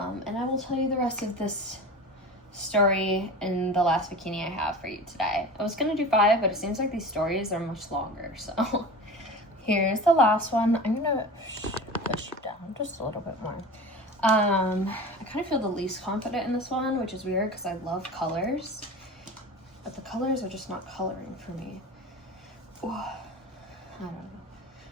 I will tell you the rest of this story in the last bikini I have for you today. I was gonna do 5, but it seems like these stories are much longer. So here's the last one. I'm gonna push you down just a little bit more. I kind of feel the least confident in this one, which is weird because I love colors, but the colors are just not coloring for me. Ooh, I don't know.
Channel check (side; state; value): both; normal; correlation 0.34